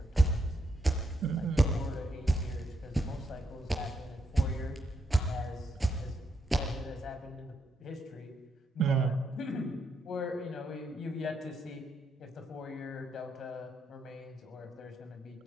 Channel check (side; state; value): both; normal; correlation 0.79